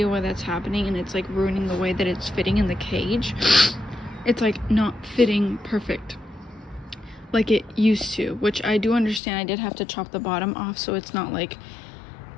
why that's happening, and it's like ruining the way that it's fitting in the cage. It's like not fitting perfect. like it used to, which I do understand. I did have to chop the bottom off so it's not like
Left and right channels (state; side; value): drops out; right; at 9.2 s